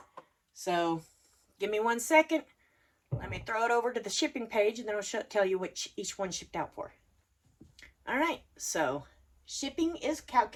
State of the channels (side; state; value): both; identical; correlation 1.00